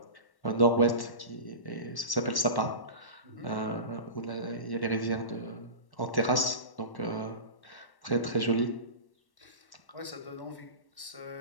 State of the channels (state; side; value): late; right; 1.1 ms